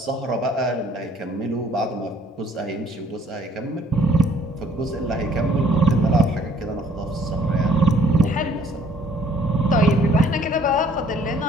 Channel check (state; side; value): normal; both; correlation 0.60